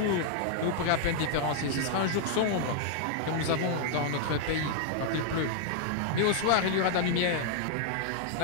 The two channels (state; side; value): different; both; correlation 0.00